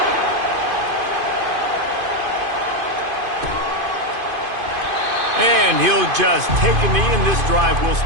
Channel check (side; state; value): left; late; 2.5 ms